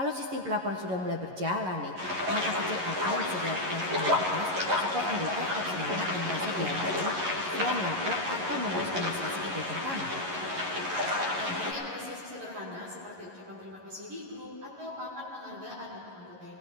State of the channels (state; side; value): late; left; 11 ms